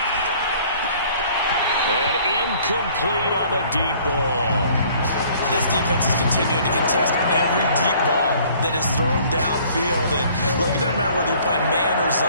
And incomplete on the deep ball. This defense is continuing to contest every deep ball that is thrown downfield. And look, it doesn't matter whether you're playing man or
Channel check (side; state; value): both; inverted; correlation -0.56